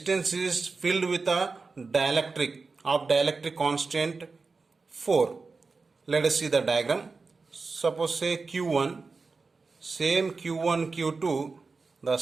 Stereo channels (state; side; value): quieter; left; 4.2 dB